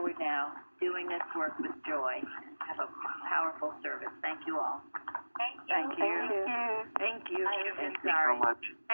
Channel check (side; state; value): both; inverted; correlation -1.00